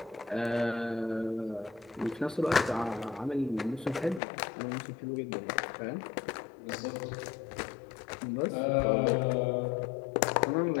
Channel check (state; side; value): drops out; right; at 4.2 s